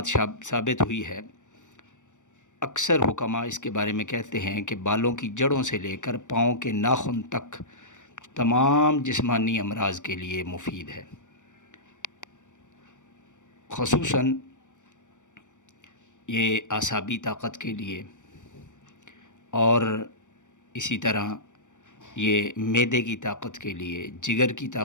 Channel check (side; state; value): right; late; 0.85 ms